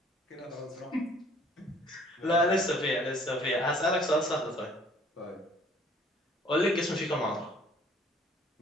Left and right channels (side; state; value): both; normal; correlation 0.56